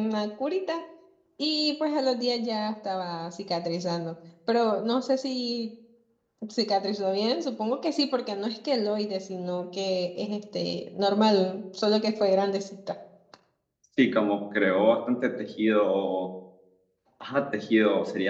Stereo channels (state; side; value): identical; both; correlation 1.00